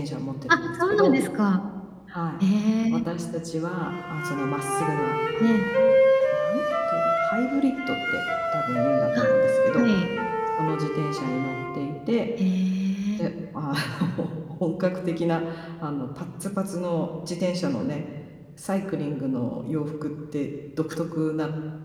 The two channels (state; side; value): identical; both; correlation 1.00